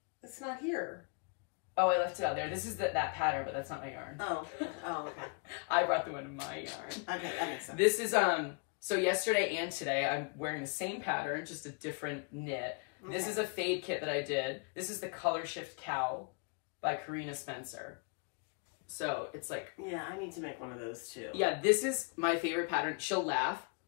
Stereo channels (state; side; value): quieter; right; 37.3 dB